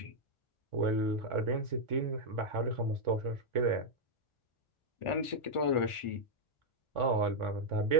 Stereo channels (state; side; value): late; right; 1.4 ms